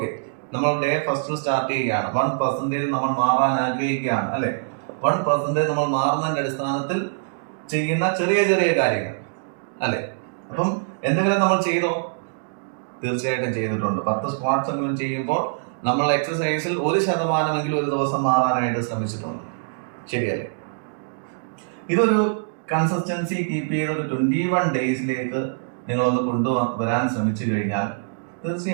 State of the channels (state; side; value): silent; left; digital silence